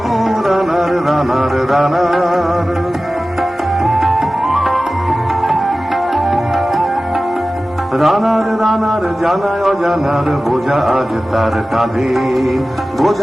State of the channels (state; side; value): normal; both; correlation 0.96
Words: রানার রানার রানার। রানার রানার জানায় অজানার বোঝা আজ তার কাঁধে,